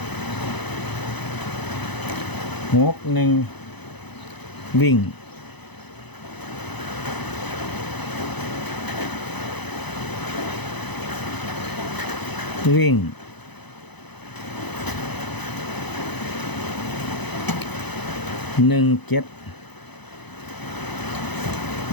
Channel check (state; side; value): late; right; 0.99 ms